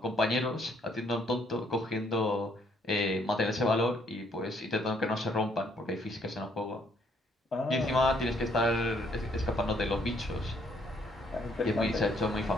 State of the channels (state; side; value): normal; both; correlation 0.68